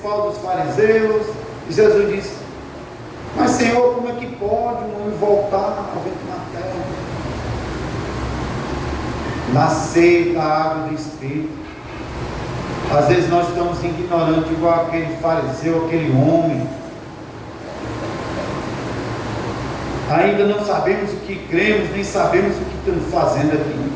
dos fariseus, e Jesus disse: mas Senhor, como é que pode um homem voltar ao vento na terra? Nascer da água do Espírito. Às vezes nós estamos ignorantes, igual aquele fariseu, aquele homem. Ainda não sabemos o que cremos, nem sabemos o que estamos fazendo aqui.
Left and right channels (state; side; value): identical; both; correlation 1.00